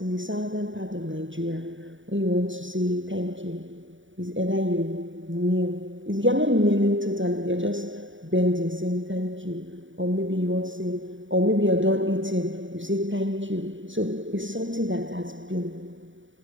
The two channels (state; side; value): late; left; 0.56 ms